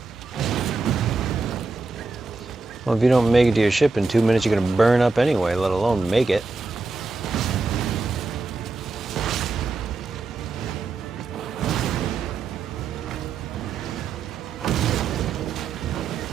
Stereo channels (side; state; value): left; quieter; 3.9 dB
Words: Well, if you don't make it to your ship in 2 minutes, you're gonna burn up anyway, let alone make it.